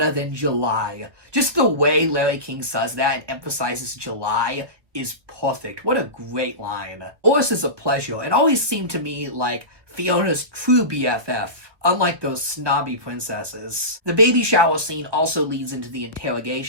than July. Just the way Larry King says that and emphasizes July is perfect. What a great line. Doris is a pleasure and always seemed to me like Fiona's true BFF, unlike those snobby princesses. The baby shower scene also leads into the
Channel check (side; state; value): left; late; 1.2 ms